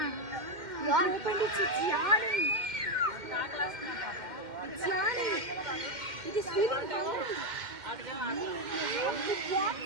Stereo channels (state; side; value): late; left; 2.1 ms